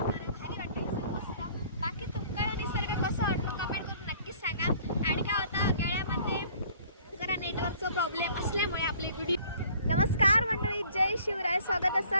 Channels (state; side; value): inverted; both; correlation -0.54